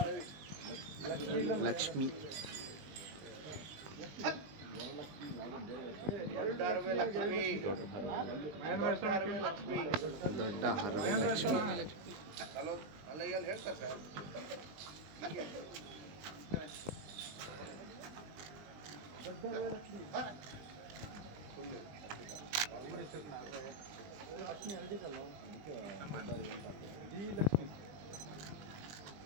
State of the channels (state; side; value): late; left; 20 ms